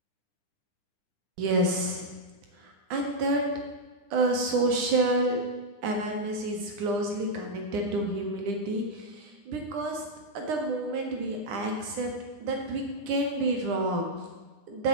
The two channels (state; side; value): late; left; 9.9 ms